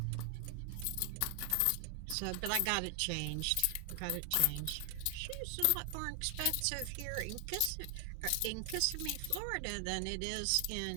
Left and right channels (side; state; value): both; different; correlation 0.00